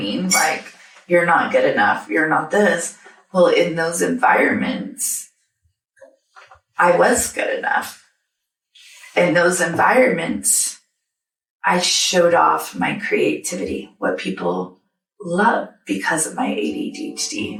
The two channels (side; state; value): both; identical; correlation 1.00